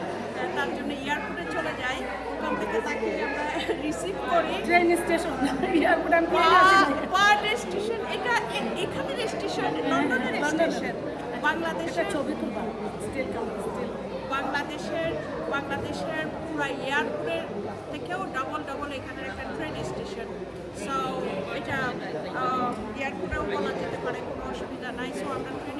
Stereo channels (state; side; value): identical; both; correlation 1.00